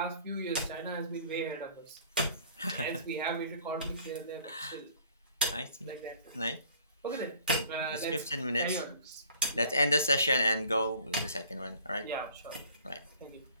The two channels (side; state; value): both; inverted; correlation -0.52